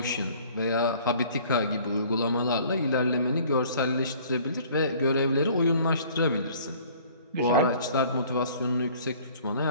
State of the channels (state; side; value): inverted; both; correlation -0.53